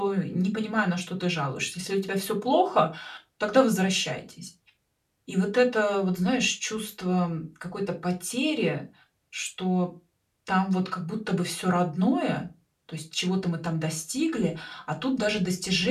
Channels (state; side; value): identical; both; correlation 1.00